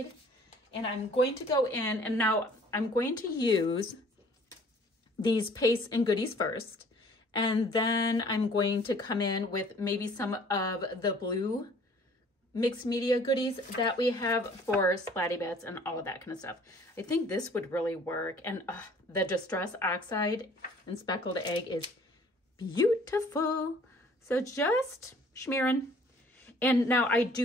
And I'm going to go in, and now I'm going to use these pastes and goodies first. And then I'm going to come in with maybe some of the blue mixed media goodies that we have for splatty bits and all of that kind of stuff. I think this would really work. And the Distress Oxide and Speckled Egg is beautiful. So just smearing. And now I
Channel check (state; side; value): normal; both; correlation 0.55